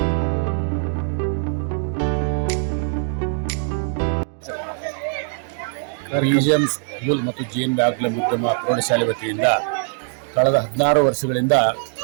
BGM school ಮತ್ತು GNB ಆಂಗ್ಲ ಮಾಧ್ಯಮ ಪ್ರೌಢಶಾಲೆ ವತಿಯಿಂದ ಕಳೆದ 16 ವರ್ಷಗಳಿಂದ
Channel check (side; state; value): left; silent; digital silence